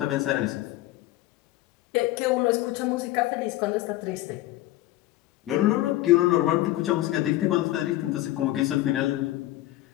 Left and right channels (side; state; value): right; quieter; 16.1 dB